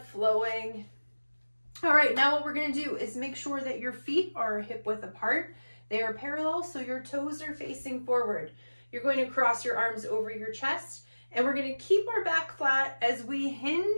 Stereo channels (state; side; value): inverted; both; correlation -1.00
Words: flowing. All right, now what we're going to do is make sure that your feet are hip width apart. They are parallel, so your toes are facing forward. You're going to cross your arms over your chest, and we're going to keep our back flat as we